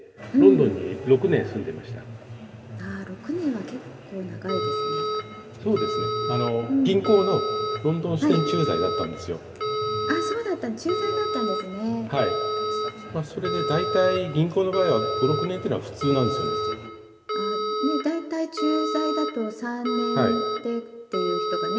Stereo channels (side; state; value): both; identical; correlation 1.00